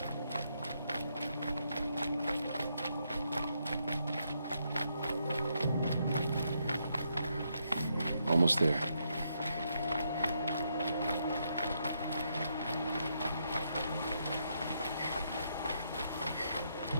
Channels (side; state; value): both; inverted; correlation -0.77